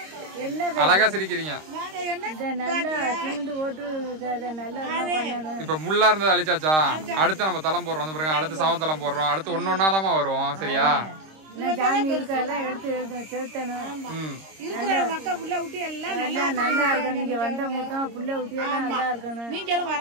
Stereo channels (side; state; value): left; late; 26 ms